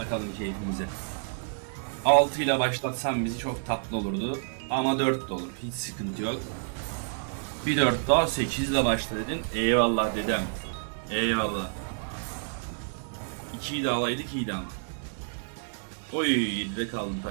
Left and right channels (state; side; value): silent; left; digital silence